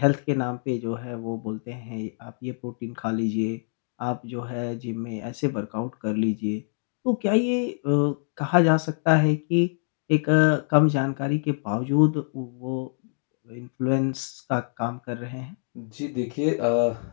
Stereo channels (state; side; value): silent; right; 61 dB below the other